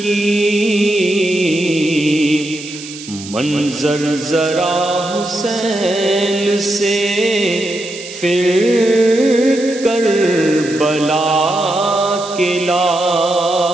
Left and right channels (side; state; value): right; noise; hiss, 14 dB below the sound